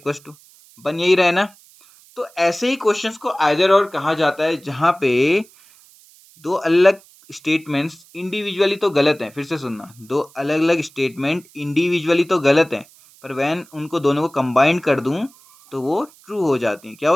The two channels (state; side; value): noise; right; hiss, 27 dB below the sound